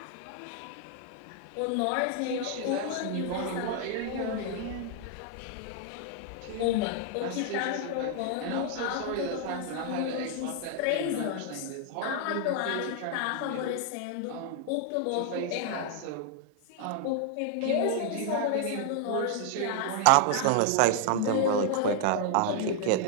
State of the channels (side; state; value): both; different; correlation 0.00